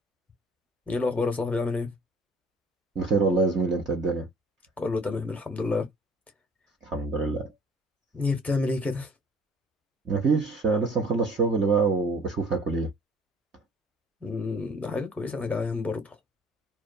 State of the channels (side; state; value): both; normal; correlation 0.53